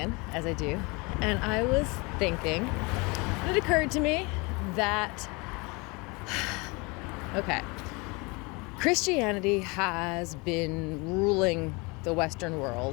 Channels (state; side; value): quieter; right; 27.5 dB